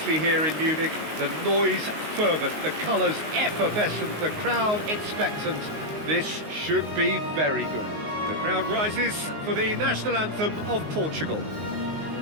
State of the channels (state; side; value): late; left; 19 ms